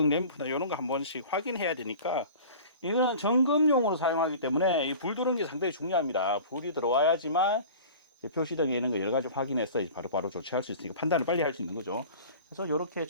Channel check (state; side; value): inverted; both; correlation -0.40